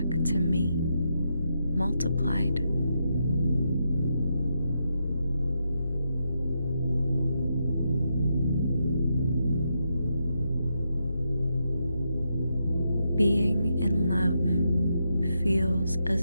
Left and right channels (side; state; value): both; inverted; correlation -0.82